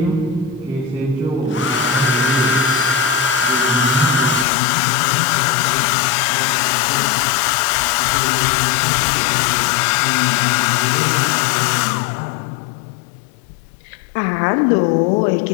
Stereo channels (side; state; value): right; drops out; at 4.5 s